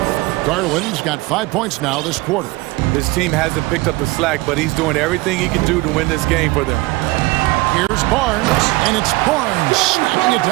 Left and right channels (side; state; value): left; quieter; 21.8 dB